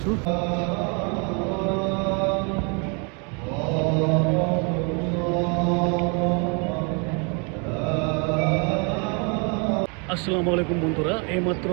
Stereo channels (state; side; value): quieter; left; 34.7 dB